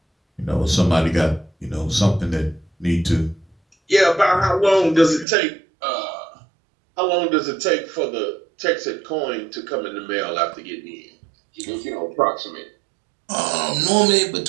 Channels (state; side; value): drops out; left; at 5.2 s